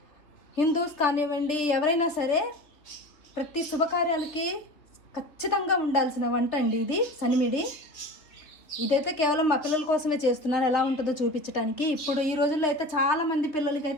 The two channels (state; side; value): late; right; 3.4 ms